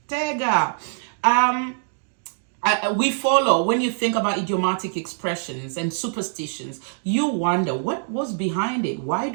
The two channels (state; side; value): silent; left; digital silence